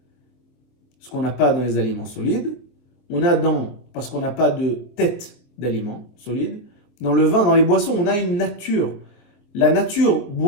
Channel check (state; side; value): late; right; 24 ms